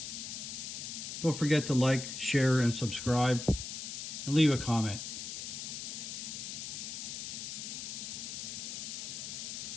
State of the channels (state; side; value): noise; left; hiss, 6 dB below the sound